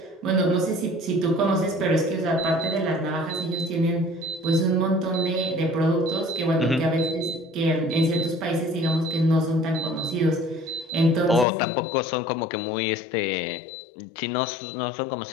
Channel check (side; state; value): right; drops out; at 11.5 s